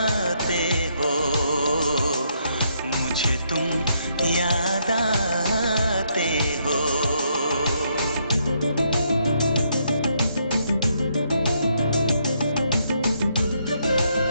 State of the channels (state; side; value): inverted; both; correlation -0.74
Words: हो, मुझे तुम याद आते हो।